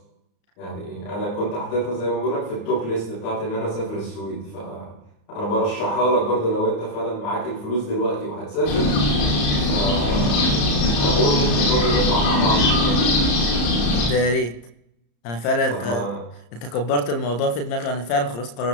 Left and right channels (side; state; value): right; late; 34 ms